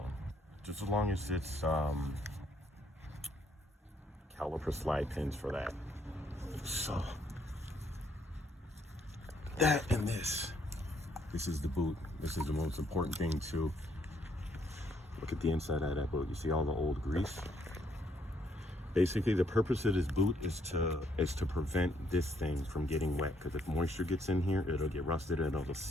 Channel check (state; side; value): normal; both; correlation 0.70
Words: Just as long as it's caliper slide pins for that. So that and this is the boot. This is the most important thing too. Look at the inside of that boot. You see all the old grease? Basically, the purpose of this boot is to prevent this thing from getting wet, because if moisture gets in here, it'll get rusted and it'll